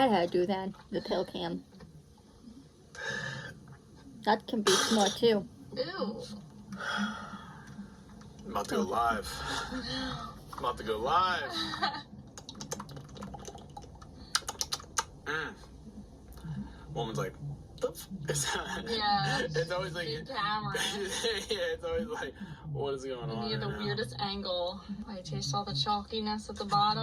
had to do that, the pill cam. That can be smart, too. Ew. I'm about to go live. I'm about to go live. Woman's like, yeah. It's always like, camera. Yeah, it's always like, what is going on? You have the weirdest angle. I taste all the chalkiness at the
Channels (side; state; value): both; identical; correlation 1.00